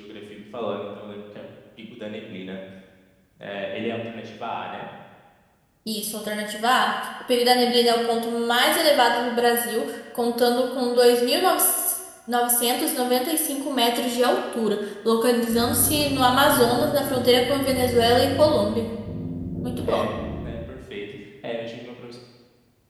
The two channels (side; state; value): both; identical; correlation 1.00